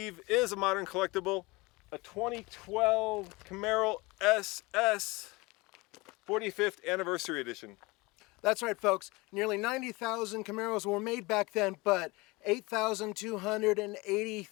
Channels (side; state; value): right; quieter; 23.9 dB